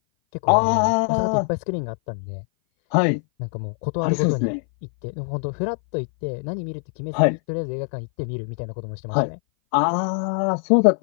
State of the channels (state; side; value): silent; right; 58 dB below the other